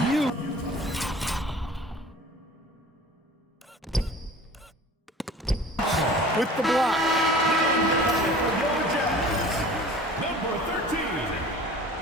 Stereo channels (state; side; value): normal; both; correlation 0.43